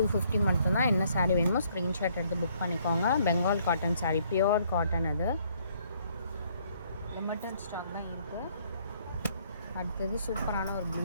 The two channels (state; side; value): inverted; both; correlation -0.65